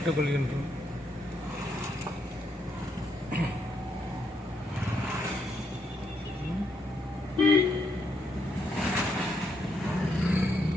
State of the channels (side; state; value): both; normal; correlation 0.77